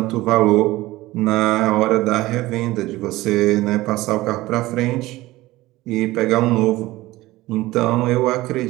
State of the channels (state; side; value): quieter; left; 18.2 dB